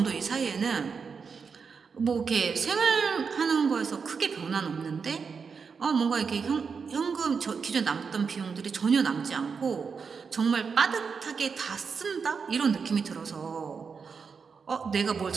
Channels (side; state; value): left; quieter; 5.6 dB